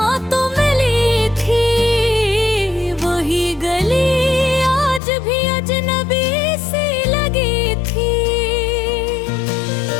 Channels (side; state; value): right; drops out; at 5.0 s